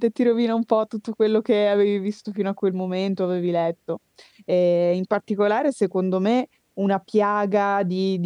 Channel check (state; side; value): identical; both; correlation 1.00